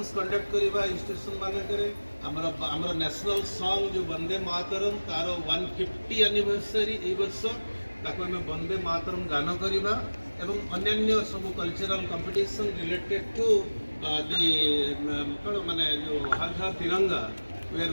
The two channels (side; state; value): both; inverted; correlation -1.00